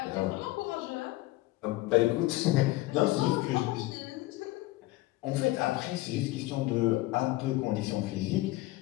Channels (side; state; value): right; quieter; 18.8 dB